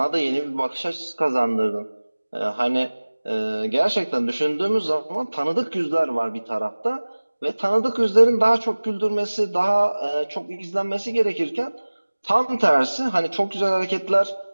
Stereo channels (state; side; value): inverted; both; correlation -1.00